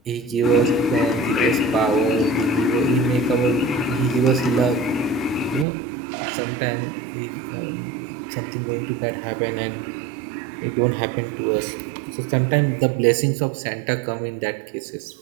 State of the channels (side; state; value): left; drops out; at 5.7 s